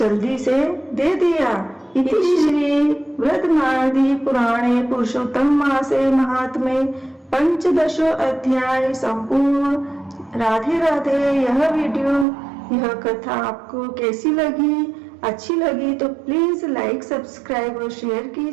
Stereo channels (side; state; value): left; drops out; at 12.2 s